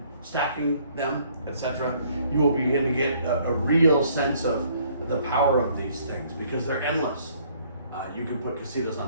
them, etc., you will begin to get a real sense of the power of these things because they're endless. You can put casitas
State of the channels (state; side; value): inverted; both; correlation -0.62